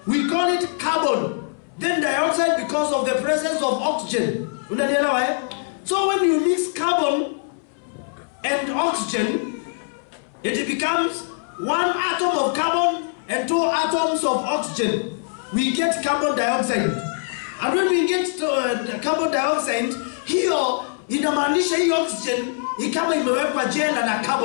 We call it carbon, then dioxide because of the presence of oxygen. Unanielewa So when you mix carbon and oxygen, it becomes 1 atom of carbon and 2 atoms of oxygen. We get carbon dioxide. And when we get carbon dioxide, hiyo inamaanisha hii oxygen kama imewekwa jela na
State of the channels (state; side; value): silent; right; 64 dB below the other